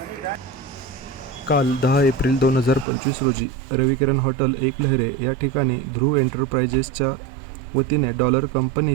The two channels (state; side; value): drops out; left; at 2.9 s